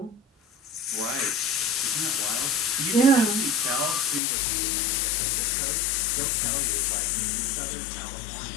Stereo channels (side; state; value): right; drops out; at 4.2 s